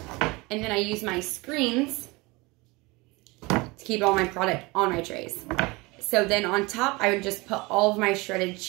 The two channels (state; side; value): quieter; left; 24.2 dB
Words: and then I use my screens to keep all my product on my trays. So then on top, I would just put all of my shredded